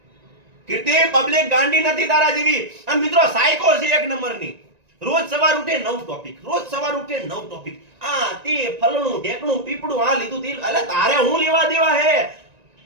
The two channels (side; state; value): left; late; 1.9 ms